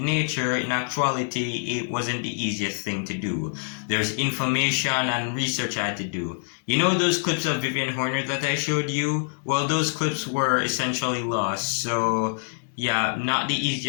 nature, in actuality it wasn't the easiest thing to do. There's information and research I had to do. You know those clips of Vivian Horner that I showed you? Well, those clips were essentially lost, so yeah, not the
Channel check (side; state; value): right; silent; 61 dB below the other